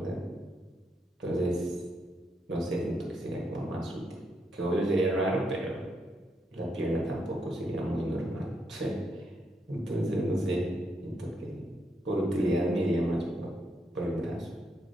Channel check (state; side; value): normal; both; correlation 0.79